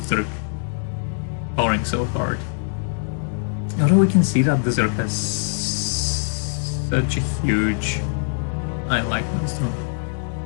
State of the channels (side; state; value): right; silent; digital silence